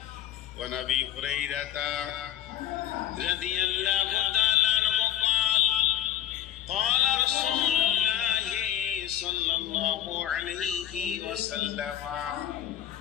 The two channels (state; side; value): quieter; right; 11.7 dB